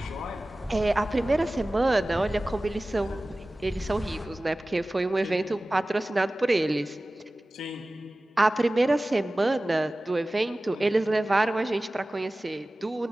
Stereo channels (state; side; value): normal; both; correlation 0.97